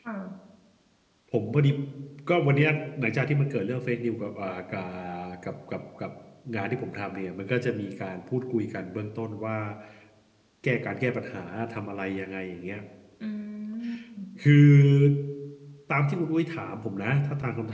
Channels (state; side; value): identical; both; correlation 1.00